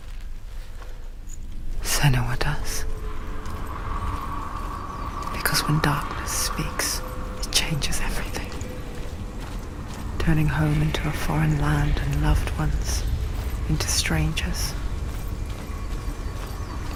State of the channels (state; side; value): identical; both; correlation 1.00